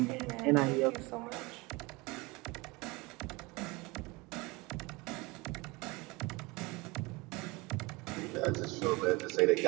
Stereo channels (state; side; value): quieter; left; 24.4 dB